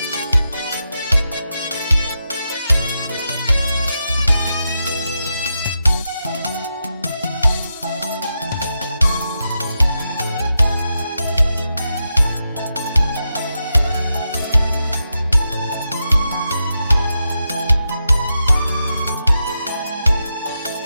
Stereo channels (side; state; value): both; inverted; correlation -0.87